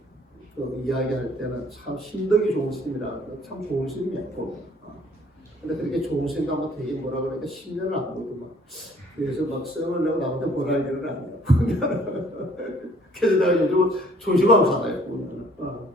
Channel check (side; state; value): both; normal; correlation 0.58